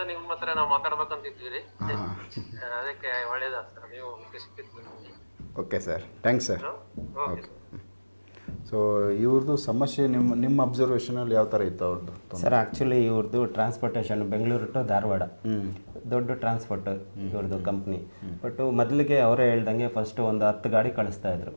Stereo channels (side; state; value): both; inverted; correlation -1.00